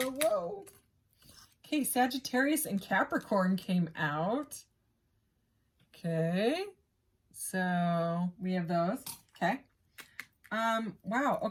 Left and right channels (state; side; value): identical; both; correlation 1.00